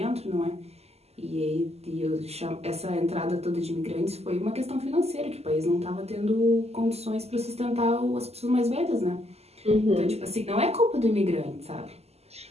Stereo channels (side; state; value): left; late; 0.30 ms